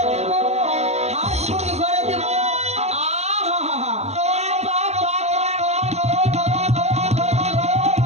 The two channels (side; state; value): left; late; 0.32 ms